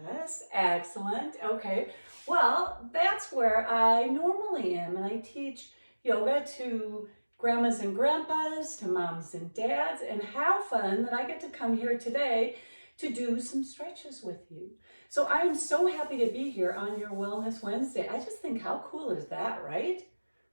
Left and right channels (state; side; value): inverted; both; correlation -1.00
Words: excellent. Okay, well, that's where I normally am, and I teach yoga to grandmas and grandpas, to moms and dads, and how fun that I get to come here today to do some stretches with you. So I am so happy to be here on your Wellness Wednesday. I just think, how cool is that, right?